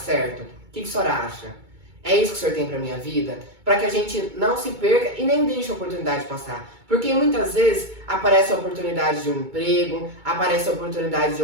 O que o senhor acha? É isso que o senhor tem para minha vida? Para que a gente não se perca e nem deixe a oportunidade passar. Porque muitas vezes aparece a oportunidade de um emprego, aparece a oportunidade de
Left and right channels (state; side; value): late; left; 2.2 ms